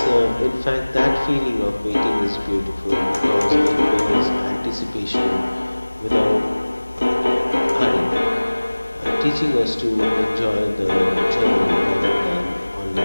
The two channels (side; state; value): both; inverted; correlation -1.00